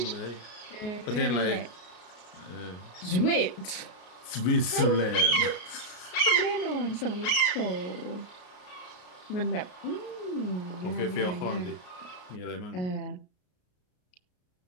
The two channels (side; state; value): right; late; 33 ms